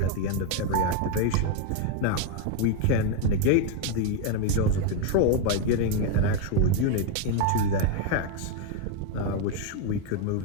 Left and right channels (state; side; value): different; both; correlation 0.01